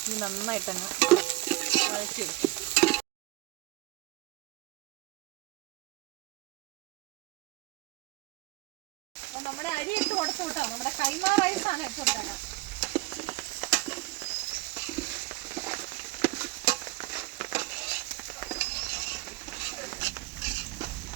ഇനി നന്നായിട്ടങ്ങ് വഴറ്റിയെടുക്കും. നമ്മുടെ അരി ഇട്ട് കൊടുത്തു കേട്ടോ. നമ്മുടെ കൈമ റൈസാണ് ഇട്ട് കൊടുത്തത്.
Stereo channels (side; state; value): left; quieter; 20.5 dB